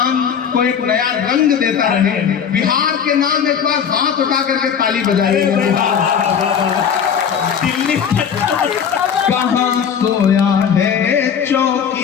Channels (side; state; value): right; quieter; 7.7 dB